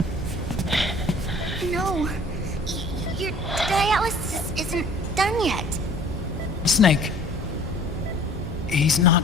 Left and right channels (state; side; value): normal; both; correlation 0.50